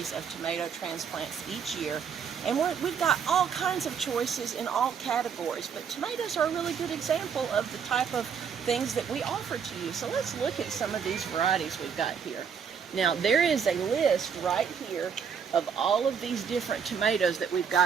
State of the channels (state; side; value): quieter; left; 6.9 dB